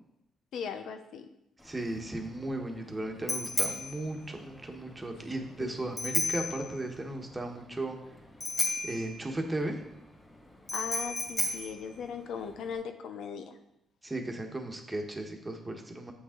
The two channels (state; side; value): normal; both; correlation 0.85